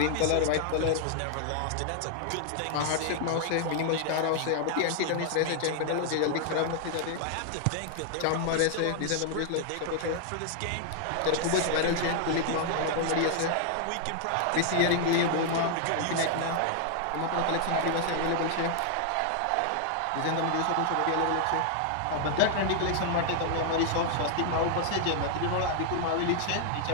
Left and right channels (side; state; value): both; different; correlation 0.00